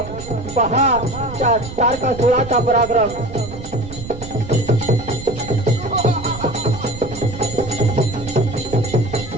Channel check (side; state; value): right; noise; rumble, 12 dB below the sound